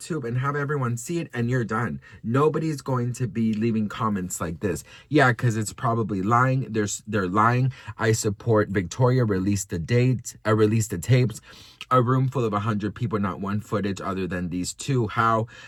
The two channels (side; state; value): both; identical; correlation 1.00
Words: and have everyone see it, and you're done. Nobody's going to be leaving comments like this. Yeah, because it's probably lying. They're lying. I support Victoria. Release the tapes. A room full of 100 people, not one footage other than these two. How?